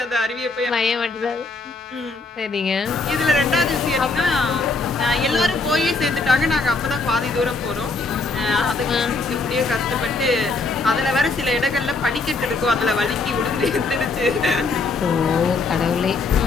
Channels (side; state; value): right; quieter; 3.8 dB